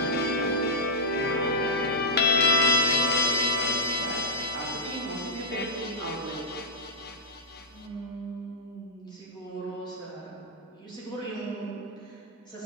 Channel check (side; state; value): both; normal; correlation -0.11